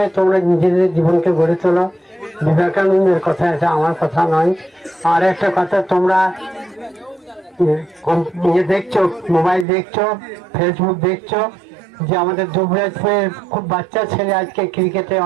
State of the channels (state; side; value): drops out; left; at 9.7 s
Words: তোমরা নিজেদের জীবনকে গড়ে তোলো। বিবেকানন্দের কথা আছে, আমার কথা নয়। আর একটা কথা, তোমরা দেখছো, মোবাইল দেখছো, ফেসবুক দেখছো যে আমাদের দুবরাজপুরের খুব বাচ্চা ছেলে আজকে ক্রিকেটে